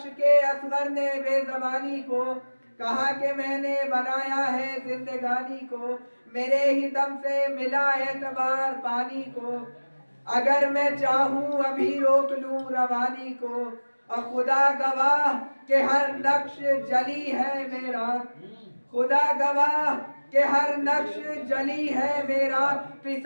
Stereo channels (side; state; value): both; inverted; correlation -1.00